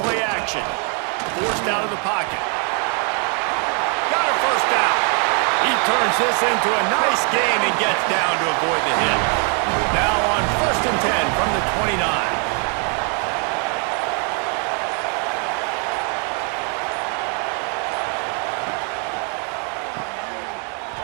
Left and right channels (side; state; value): left; quieter; 39.3 dB